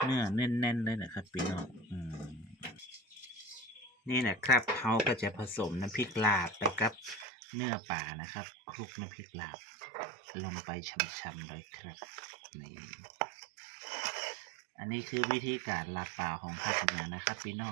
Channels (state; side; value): drops out; left; at 7.2 s